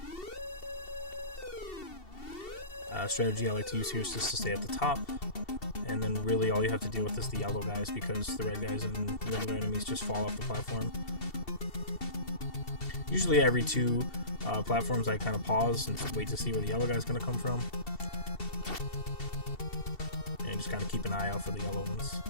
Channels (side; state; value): right; late; 2.7 ms